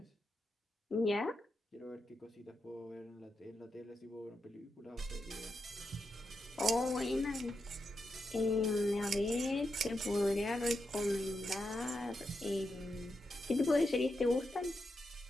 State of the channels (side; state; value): both; normal; correlation 0.86